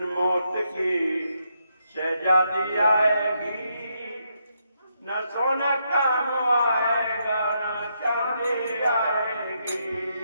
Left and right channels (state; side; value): inverted; both; correlation -0.79